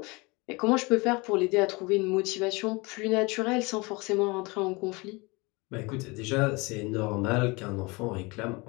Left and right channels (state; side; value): quieter; right; 26.0 dB